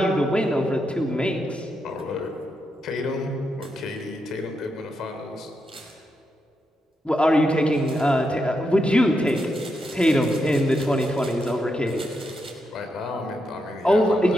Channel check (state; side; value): normal; both; correlation 0.84